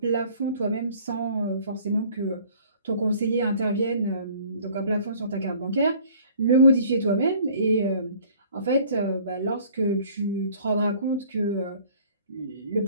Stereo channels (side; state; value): both; inverted; correlation -0.53